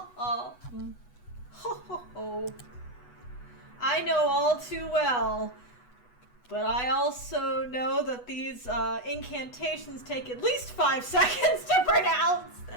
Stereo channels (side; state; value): right; late; 8.1 ms